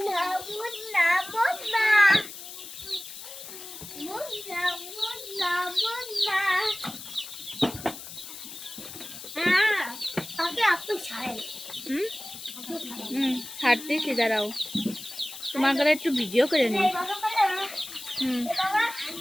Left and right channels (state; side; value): noise; left; hiss, 12 dB below the sound